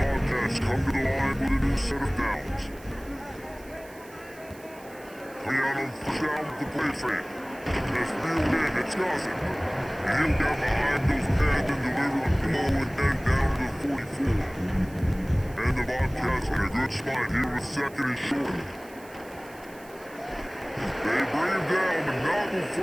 come to the line with a new set of downs. Coming out on first down with the play fake. That's reeled in, it's Gossett. He'll down behind those pads and deliver a blow and then down to the 44. And the Bobcats in a good spot here with second and short. They bring him down, but not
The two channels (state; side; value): noise; right; hiss, 23 dB below the sound